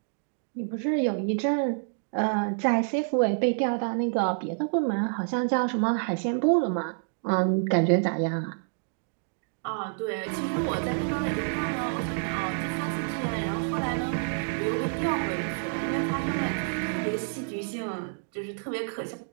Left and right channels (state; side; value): silent; left; digital silence